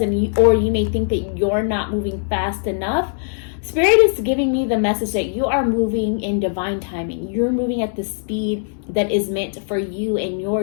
you may think that you're not moving fast enough, Spirit is giving me the message that you are moving in divine timing. You're moving at the speed that is meant for you and your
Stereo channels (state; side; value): silent; right; digital silence